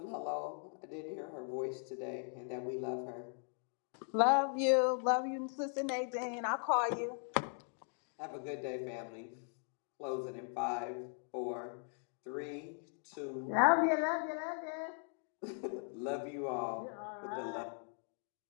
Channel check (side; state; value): right; silent; 52 dB below the other